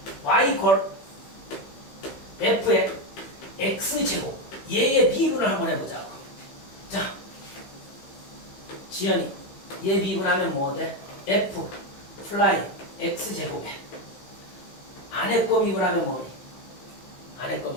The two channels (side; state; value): right; late; 15 ms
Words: y 이퀄 f의 x제곱 얘의 미분을 한번 해보자고. 자, 지연이 얘 미분하면 뭐 돼? f 플라이 x제곱에 안에 거 미분하면 뭐니? 안에 거